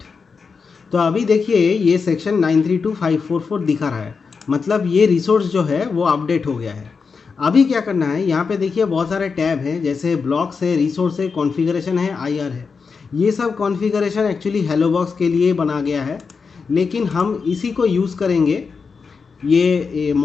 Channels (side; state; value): right; quieter; 5.2 dB